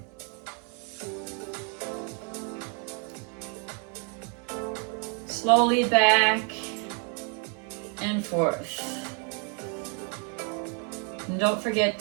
Slowly back and forth. And don't forget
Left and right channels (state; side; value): quieter; left; 38.6 dB